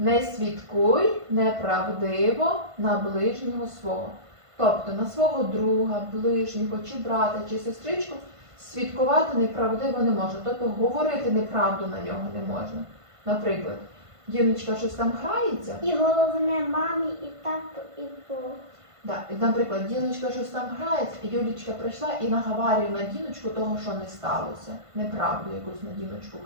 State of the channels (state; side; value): late; left; 1.5 ms